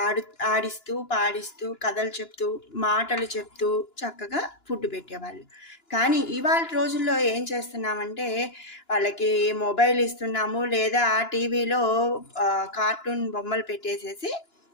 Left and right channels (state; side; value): late; right; 2.9 ms